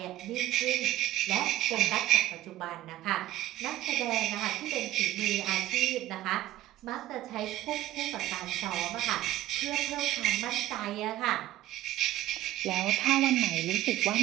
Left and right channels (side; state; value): left; quieter; 14.7 dB